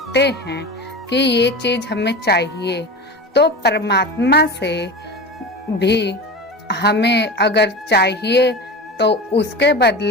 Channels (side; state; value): both; normal; correlation 0.29